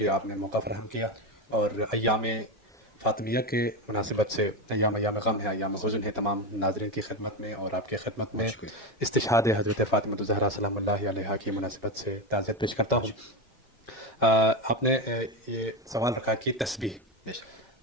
آپ نے موقع فراہم کیا، اور ایام فاطمیہ کے مناسبت سے ایام غم ہے، ایام حزن ہے، تمام ناظرین کی خدمت میں اور آپ کی خدمت میں استشہاد حضرت فاطمہ الزہرا سلام اللہ علیہا کی مناسبت سے تعزیت پیش کرتا ہوں۔ آپ نے یہ سوال رکھا کہ تسبیح،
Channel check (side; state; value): both; normal; correlation 0.15